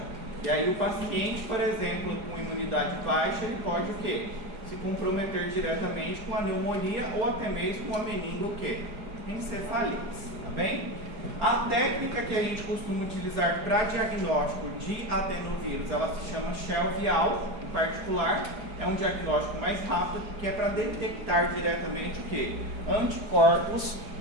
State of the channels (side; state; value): left; late; 4.8 ms